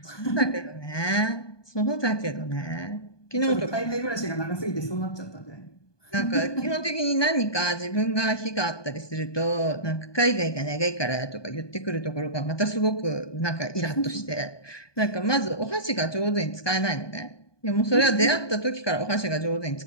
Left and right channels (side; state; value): right; late; 1.2 ms